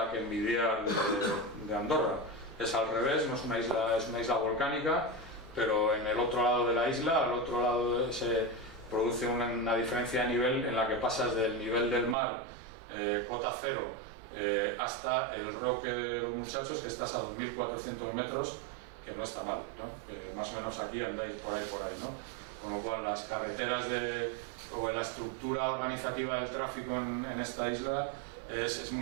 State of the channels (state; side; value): drops out; left; at 12.2 s